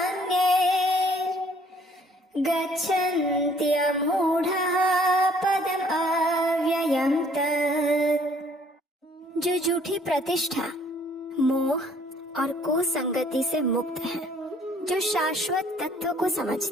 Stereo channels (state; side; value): normal; both; correlation 0.60